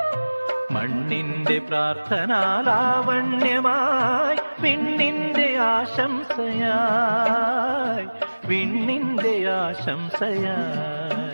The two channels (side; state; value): both; inverted; correlation -1.00